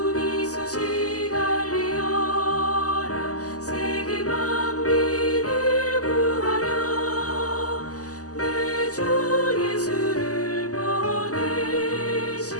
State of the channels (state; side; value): late; right; 0.67 ms